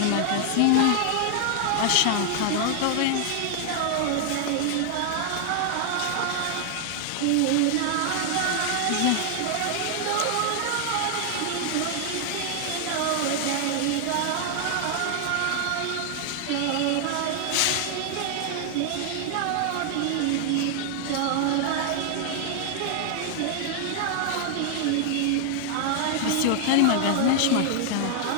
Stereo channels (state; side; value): different; both; correlation 0.00